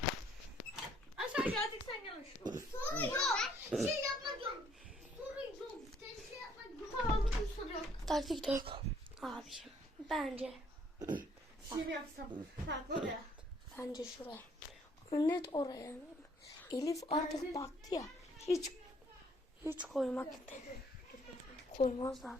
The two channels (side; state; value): both; normal; correlation 0.64